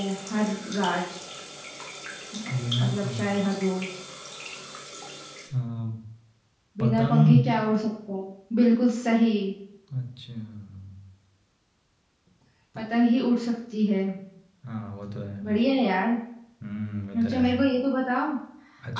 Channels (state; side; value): identical; both; correlation 1.00